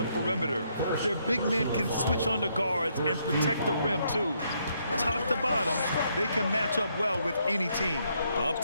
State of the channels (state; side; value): inverted; both; correlation -0.74